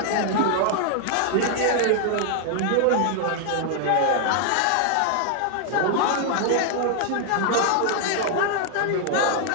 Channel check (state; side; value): different; both; correlation 0.00